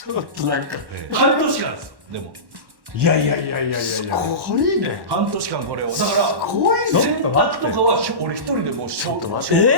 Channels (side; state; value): left; late; 1.1 ms